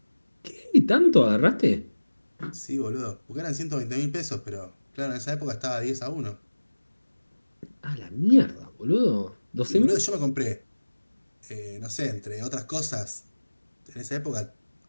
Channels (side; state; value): both; inverted; correlation -1.00